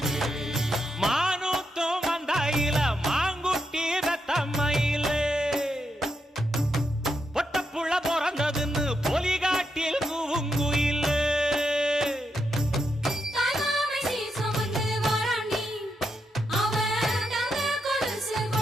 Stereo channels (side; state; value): both; normal; correlation 0.82